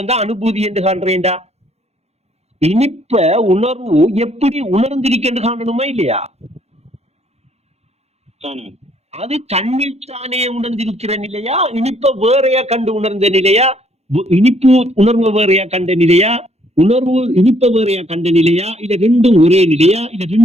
தான் அனுபூதி என்று காண்றேன்டா. இனிப்ப உணர்வு எப்படி உணர்ந்திருக்கென்று காணணுமா இல்லையா? அது தன்னில் தானே உணர்ந்திருக்கிற நிலையா, இனிப்ப வேறையா கண்டு உணர்ந்த நிலையா, இனிப்பு உணர்வு வேறையா கண்ட நிலையா, உணர்வு இனிப்ப வேறையா கண்ட நிலையா, இல்ல ரெண்டும் ஒரே நிலையா, இல்ல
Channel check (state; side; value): late; left; 0.31 ms